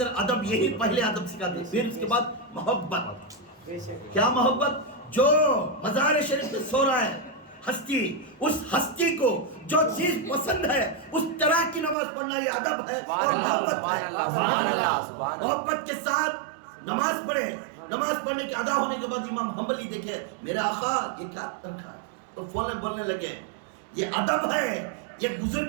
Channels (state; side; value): drops out; left; at 12.0 s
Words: ادب یہی پہلے ادب سکھاتے ہیں، پھر اس کے بعد محبت. کیا محبت؟ جو مزار شریف میں سو رہا ہے ہستی، اس ہستی کو جو چیز پسند ہے اس طرح کی نماز پڑھنا یہ ادب ہے اور محبت ہے. محبت کے ساتھ نماز پڑھے. نماز پڑھنے کے ادا ہونے کے بعد امام حنبلی دیکھے میرے آقا یہ کیا رکھا ہے، تو بولنے لگے یہ ادب ہے. یہ بزرگ